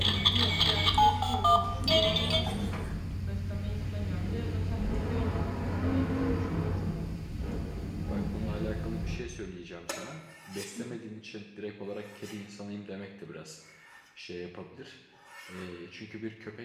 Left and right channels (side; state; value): both; identical; correlation 1.00